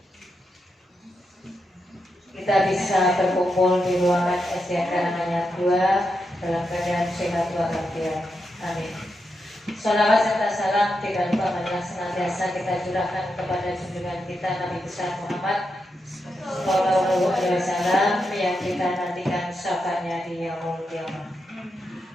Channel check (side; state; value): both; normal; correlation 0.85